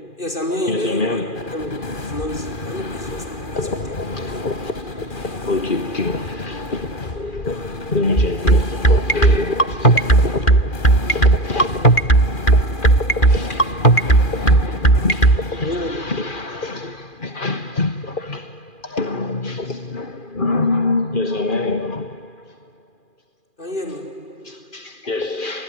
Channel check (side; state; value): right; late; 2.4 ms